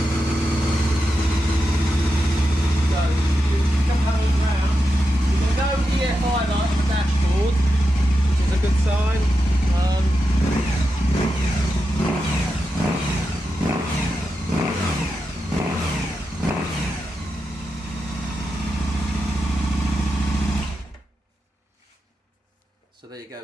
EFI light on the dashboard, which is a good sign. So there you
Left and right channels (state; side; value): normal; both; correlation 0.88